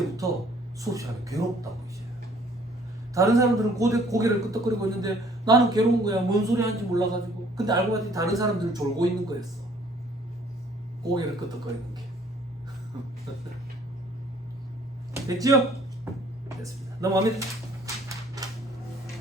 수업 시간에 괴롭다고 이제. 다른 사람들은 고개를 끄덕거리고 있는데 나는 괴로운 거야. 뭔 소리 하는지 몰라가지고. 근데 알고 봤더니 다른 사람들은 졸고 있는 거였어. 고개를 끄덕거리는 게. 됐죠? 됐습니다. 넘어갑니다.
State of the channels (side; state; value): both; normal; correlation 0.58